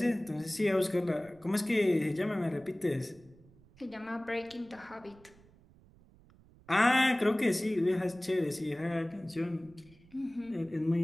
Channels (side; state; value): right; noise; rumble, 26 dB below the sound